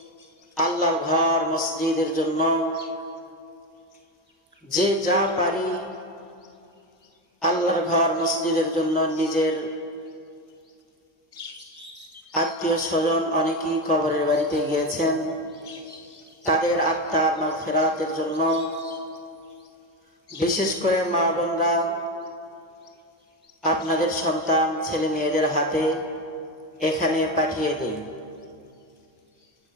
আল্লাহর ঘর মসজিদের জন্য যে যা পারি আল্লাহর ঘর মসজিদের জন্য নিজের আত্মীয় স্বজন অনেকেই কবরের বাড়িতে গিয়েছেন, তাদের আত্মার মাগফিরাতের জন্য বিশেষ করে মা বোনরা আপনাদের সন্তান ছেলে মেয়েদের হাতে এখানে পাঠিয়ে দিন।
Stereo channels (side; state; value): both; normal; correlation 0.15